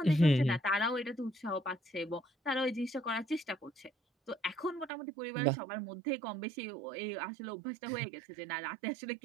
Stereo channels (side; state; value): left; drops out; at 4.9 s